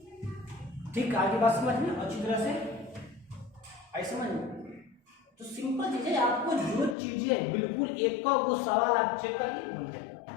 ठीक, आगे बात समझ में अच्छी तरह से आई समझ में? तो सिंपल चीज है, आपको जो चीजें बिल्कुल एक का वो सवाल आप चेक करिए बन जाए।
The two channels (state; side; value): drops out; right; at 7.0 s